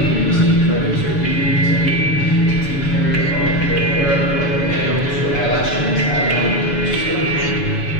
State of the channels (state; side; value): late; right; 7.0 ms